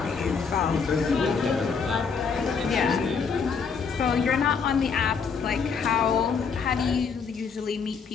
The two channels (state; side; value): quieter; right; 5.7 dB